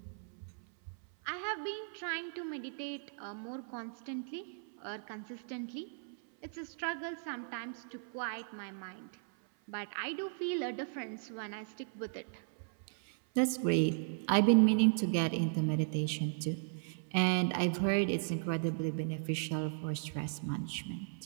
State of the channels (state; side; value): silent; left; 54 dB below the other